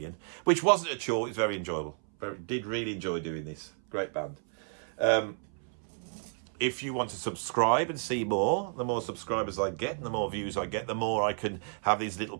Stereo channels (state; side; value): silent; left; 57 dB below the other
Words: which wasn't a chore. It was very enjoyable. Did really enjoy doing this. Great band. If you want to subscribe and see more, the more subscribers I get and the more views I get, the more I can have these little